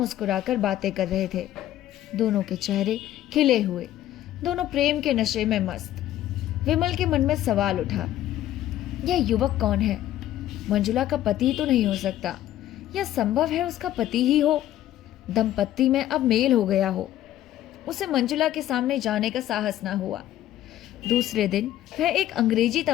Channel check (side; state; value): right; quieter; 13.1 dB